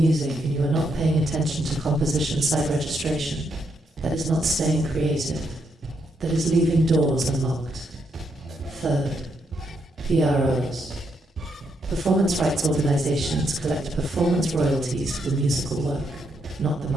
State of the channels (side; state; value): both; normal; correlation 0.78